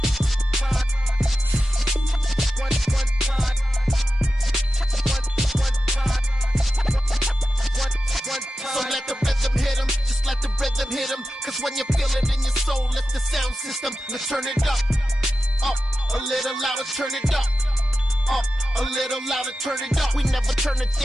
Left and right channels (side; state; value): both; normal; correlation 0.92